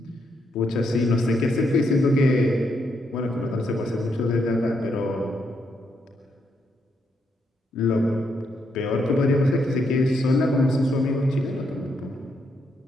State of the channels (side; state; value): both; normal; correlation 0.78